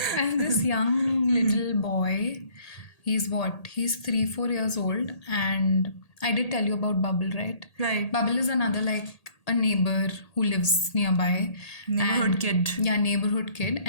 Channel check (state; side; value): late; right; 1.8 ms